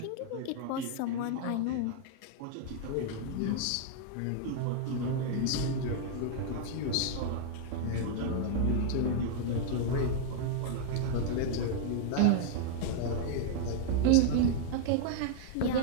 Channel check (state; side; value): different; both; correlation -0.01